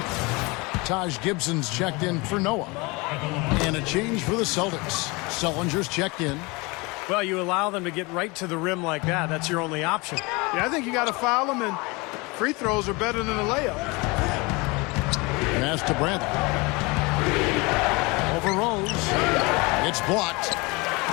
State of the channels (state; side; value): quieter; right; 25.9 dB